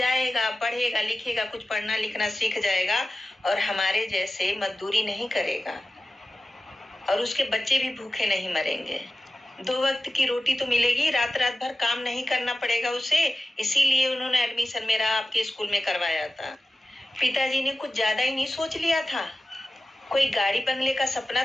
पढ़ेगा, लिखेगा, कुछ पढ़ना लिखना सीख जाएगा और हमारे जैसे मजदूरी नहीं करेगा और उसके बच्चे भी भूखे नहीं मरेंगे। 2 वक्त की रोटी तो मिलेगी, रात रात भर काम नहीं करना पड़ेगा उसे। इसीलिए उन्होंने एडमिशन मेरा आपके स्कूल में करवाया था। पिताजी ने कुछ ज्यादा ही नहीं सोच लिया था। कोई गाड़ी बंगले का सपना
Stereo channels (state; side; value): normal; both; correlation 0.96